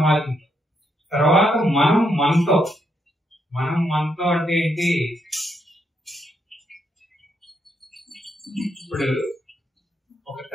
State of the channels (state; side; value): normal; both; correlation 0.77